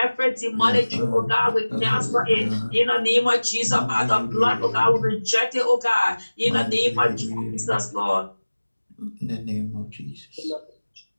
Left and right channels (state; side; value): inverted; both; correlation -1.00